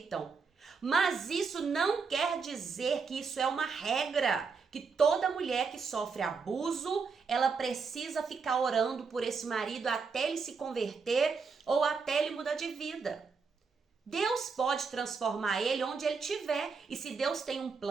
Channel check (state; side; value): quieter; left; 5.1 dB